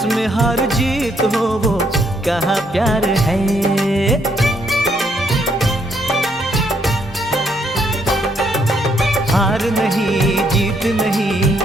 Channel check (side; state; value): both; normal; correlation 0.72